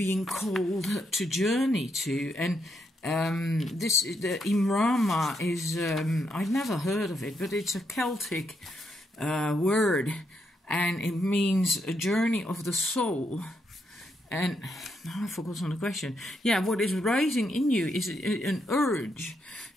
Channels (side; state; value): both; normal; correlation 0.79